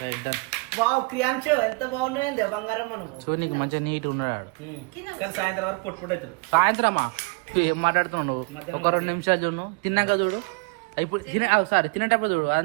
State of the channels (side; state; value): left; quieter; 30.5 dB